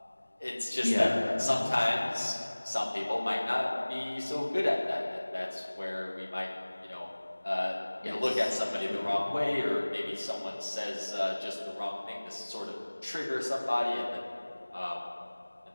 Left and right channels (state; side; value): inverted; both; correlation -1.00